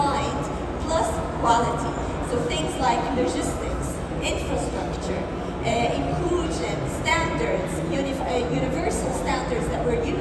plus quality. So things like logistics, infrastructure, inclusion, standards, universal standards that we're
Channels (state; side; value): identical; both; correlation 1.00